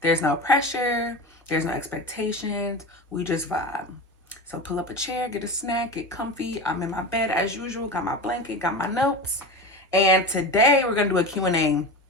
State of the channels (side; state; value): both; normal; correlation 0.26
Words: There's no pressure, there's no expectations. We just vibe. So pull up a chair, get a snack, get comfy. I'm in my bed as usual, got my blanket, got my notes. And today we're gonna do a Q&A